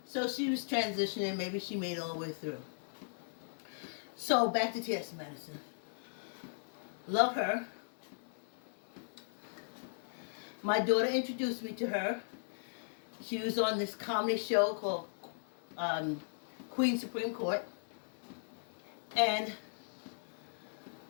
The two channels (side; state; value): right; silent; digital silence